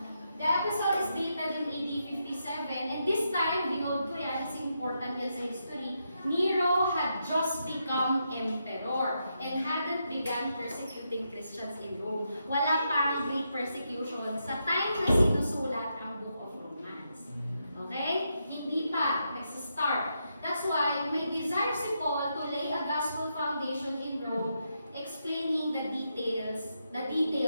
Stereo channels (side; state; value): both; inverted; correlation -0.82